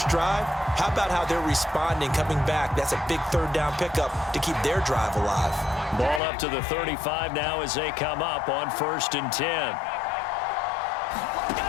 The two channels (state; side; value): drops out; right; at 6.2 s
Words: drive. How about how they're responding, coming back? That's a big 3rd down pickup to keep their drive alive. Ball up to the 35 now as they come up on 1st and 10.